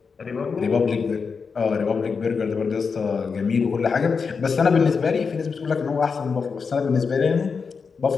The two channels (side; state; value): right; quieter; 5.4 dB